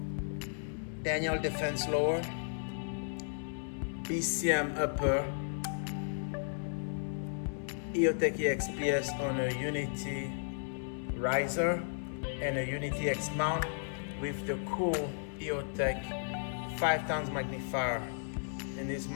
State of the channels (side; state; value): right; silent; 55 dB below the other